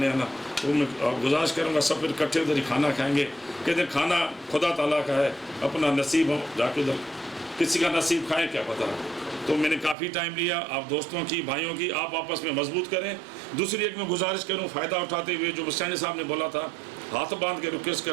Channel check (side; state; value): left; drops out; at 10.0 s